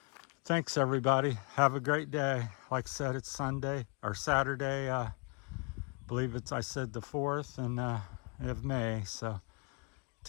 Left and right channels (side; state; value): right; quieter; 33.2 dB